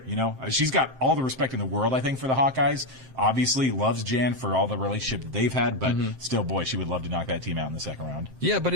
She's got all the respect in the world, I think, for the Hawkeyes. Obviously, loves Jan for all the relationship that they've had, but still, boy, she would love to knock that team out in the second round. Yeah, but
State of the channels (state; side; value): late; left; 7.6 ms